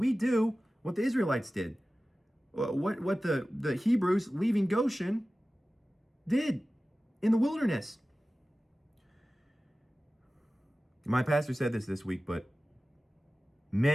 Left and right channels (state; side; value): normal; both; correlation 0.96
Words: do what the Israelites did. What the Hebrews leaving Goshen did in the wilderness. My pastor said this week, but